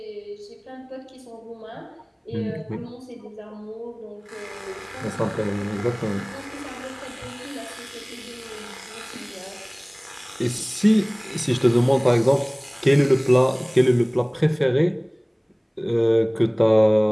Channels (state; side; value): identical; both; correlation 1.00